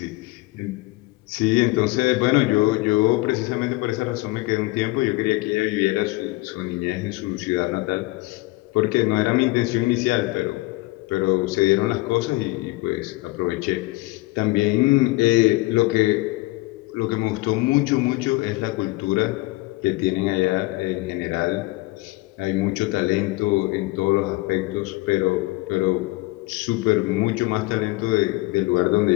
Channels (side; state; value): right; quieter; 21.4 dB